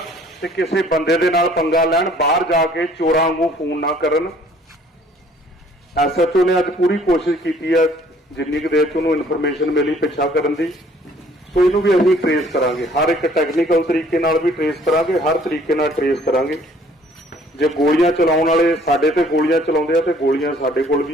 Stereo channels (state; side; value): normal; both; correlation 0.58